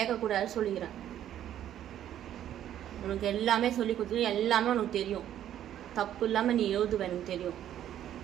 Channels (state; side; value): quieter; left; 11.2 dB